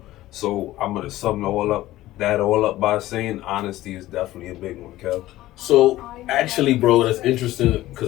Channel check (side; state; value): right; quieter; 15.8 dB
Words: So I'm gonna sum that all up by saying honesty is definitely a big one, Kev. So actually, bro, that's interesting because